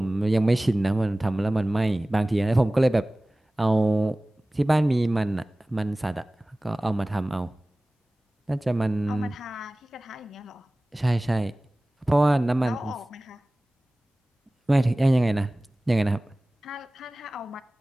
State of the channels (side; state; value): both; normal; correlation 0.98